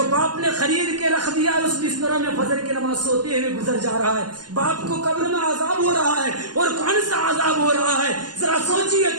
باپ نے خرید کے رکھ دیا اس بستروں میں فجر کی نماز سوتے ہوئے گزر جا رہا ہے۔ باپ کو قبر میں عذاب ہو رہا ہے، اور کون سا عذاب ہو رہا ہے؟ ذرا سوچیے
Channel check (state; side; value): late; left; 0.70 ms